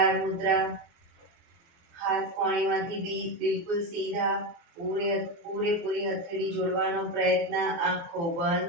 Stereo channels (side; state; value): left; late; 24 ms